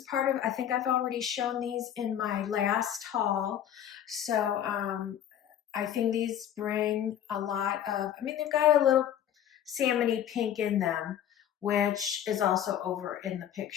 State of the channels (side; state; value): right; quieter; 10.3 dB